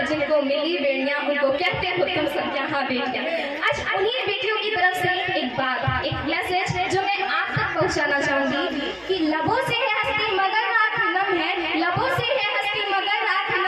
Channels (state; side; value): identical; both; correlation 1.00